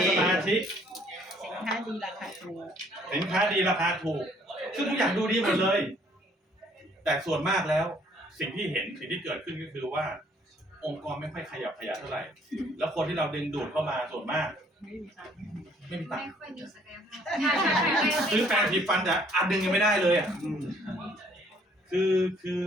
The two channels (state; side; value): normal; both; correlation 0.62